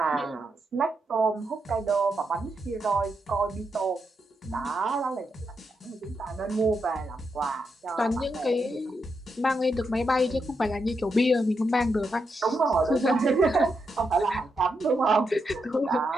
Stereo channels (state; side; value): normal; both; correlation 0.83